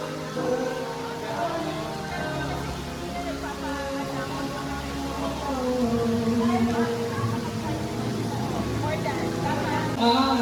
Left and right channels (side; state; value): both; identical; correlation 1.00